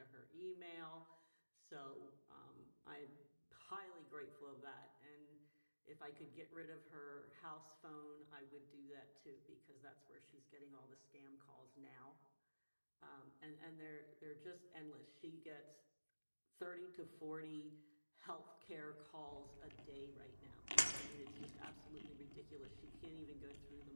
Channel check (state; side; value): inverted; both; correlation -1.00